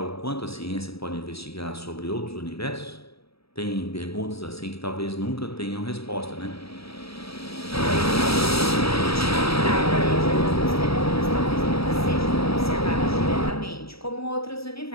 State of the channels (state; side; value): late; right; 0.77 ms